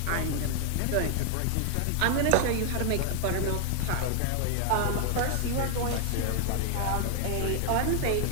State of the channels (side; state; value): both; different; correlation 0.00